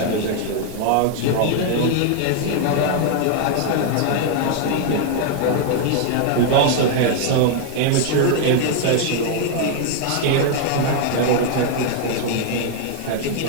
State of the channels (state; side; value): different; both; correlation 0.00